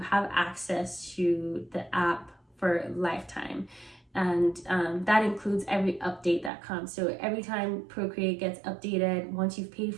access to the app for lifetime. And that includes every update that comes. So every time Procreate gets updated, once you've paid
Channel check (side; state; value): left; drops out; at 6.5 s